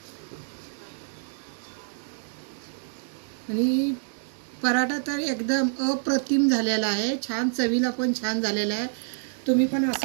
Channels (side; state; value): left; silent; digital silence